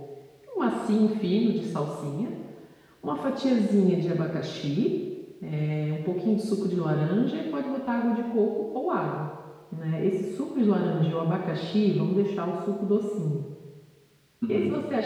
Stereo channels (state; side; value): identical; both; correlation 1.00